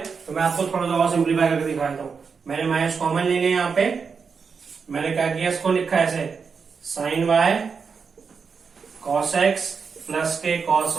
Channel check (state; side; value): quieter; left; 5.6 dB